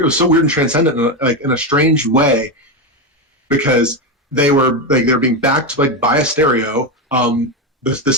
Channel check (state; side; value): normal; both; correlation 0.12